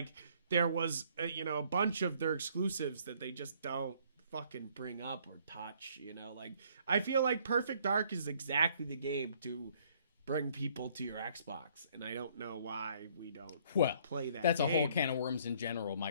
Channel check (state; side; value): inverted; both; correlation -0.63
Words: there was, a bunch of their exclusives that they just don't fucking bring up or touch, you know? Like, I feel like Perfect Dark is exactly the game to bring people to your Xbox, and I don't know why we don't play that. That's game. A whole can of worms in general.